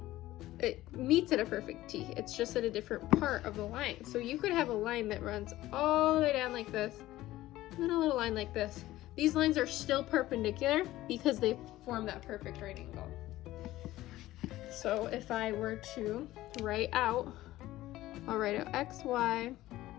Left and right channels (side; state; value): right; quieter; 16.0 dB